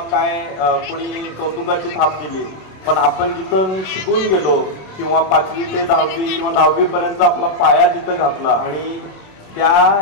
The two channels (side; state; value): right; late; 27 ms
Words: काय कोणी कौतुकाची थाप दिली, पण आपण जिथं शिकून गेलो किंवा 5वी ते 10वी किंवा 10वी पर्यंत आपला पाया जिथं घातला आणि त्या